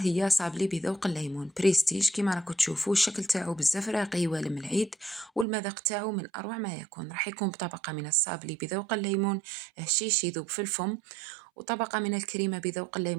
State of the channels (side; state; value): left; drops out; at 5.5 s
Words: هي صابلي بذوق الليمون بريستيج. كما راكم تشوفوا الشكل تاعو بزاف راقي والم العيد، والمذاق تاعو من أروع ما يكون. راح يكون بطبقة من الصابلي بذوق الليمون هشيش يذوب في الفم، وطبقة من الكريمة بذوق